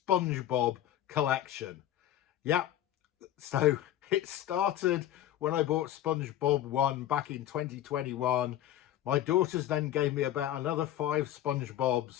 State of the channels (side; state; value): right; quieter; 12.1 dB